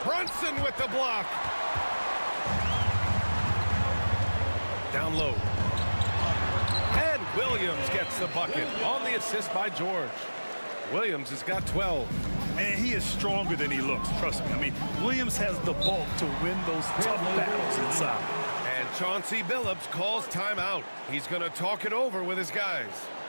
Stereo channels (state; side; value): inverted; both; correlation -1.00